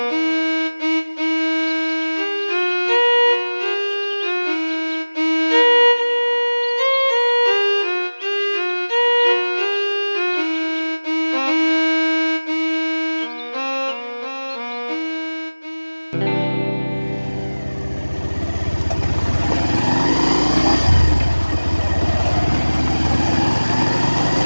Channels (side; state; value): both; inverted; correlation -1.00